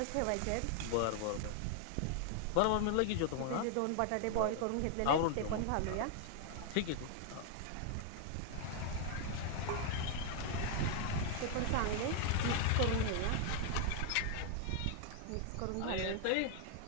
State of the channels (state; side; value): different; both; correlation 0.00